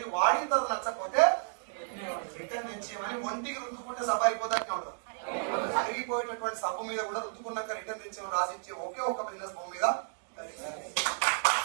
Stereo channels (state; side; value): silent; left; digital silence